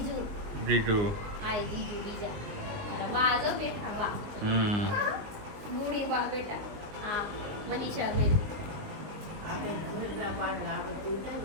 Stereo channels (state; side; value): late; left; 20 ms